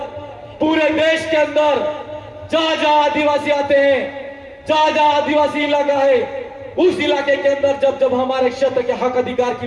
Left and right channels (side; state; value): both; identical; correlation 1.00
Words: पूरे देश के अंदर जहां जहां आदिवासी आते हैं, जहां आदिवासी इलाका है, उस इलाके के अंदर जब हमारे क्षेत्र के हक अधिकार